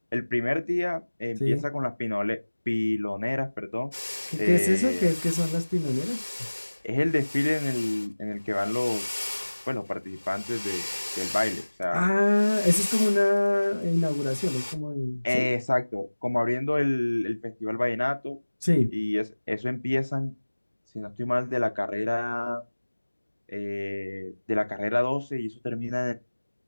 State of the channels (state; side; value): inverted; both; correlation -1.00